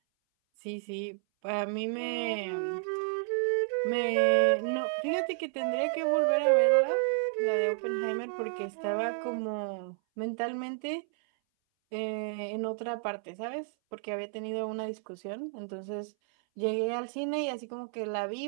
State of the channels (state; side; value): silent; left; 57 dB below the other